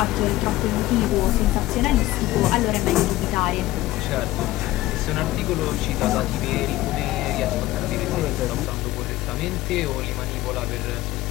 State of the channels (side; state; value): right; quieter; 16.6 dB